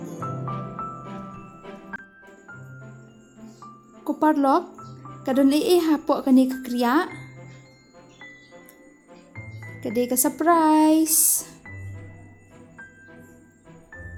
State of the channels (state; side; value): identical; both; correlation 1.00